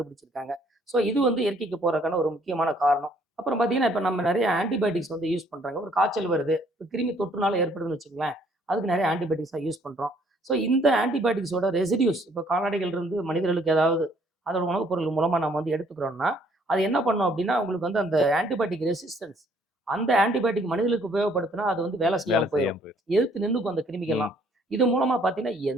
ஸோ இது வந்து இயற்கைக்கு போறதுக்கான ஒரு முக்கியமான காரணம். அப்புறம் பார்த்தீங்கன்னா, இப்ப நம்ம நெறைய ஆன்டிபயோட்டிக்ஸ் வந்து யூஸ் பண்றாங்க. ஒரு காய்ச்சல் வருது. இப்ப கிருமி தொற்றுனால ஏற்படுதுன்னு வச்சுக்கங்களேன். அதுக்கு நெறைய ஆன்டிபயோட்டிக்ஸா யூஸ் பண்றோம். ஸோ இந்த ஆன்டிபயோட்டிக்ஸோட ரெசிடியூஸ் இப்ப கால்நடைகள்ருந்து மனிதர்களுக்கு ஏதாவது அதோட உணவுப் பொருள் மூலமா நம்ம வந்து எடுத்துக்கிறோம்னா, அது என்ன பண்ணும் அப்டின்னா, உங்களுக்கு வந்து அந்த ஆன்டிபயோட்டிக் ரெசிஸ்டன்ஸ் அந்த ஆன்டிபயோட்டிக் மனிதர்களுக்கு உபயோகப்படுத்தினா, அது வந்து வேலை வேலை செய்யாம போயிரும். செய்யாம போயிரும். எதிர்த்து நின்னுக்கும் அந்த ம். கிருமிகள்லாம். இது மூலமா பார்த்தீங்கன்னா,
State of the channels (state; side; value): normal; both; correlation 0.63